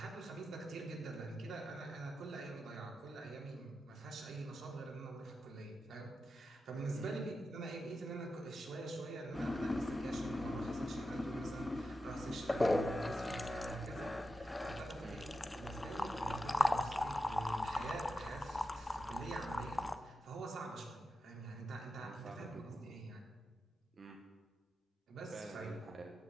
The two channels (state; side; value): normal; both; correlation 0.89